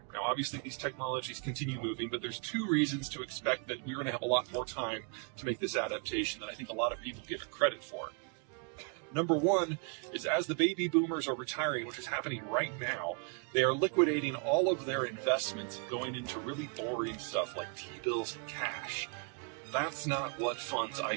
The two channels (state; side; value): quieter; left; 38.5 dB